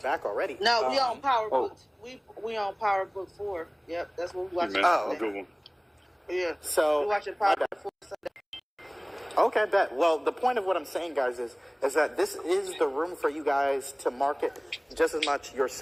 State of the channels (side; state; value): both; identical; correlation 1.00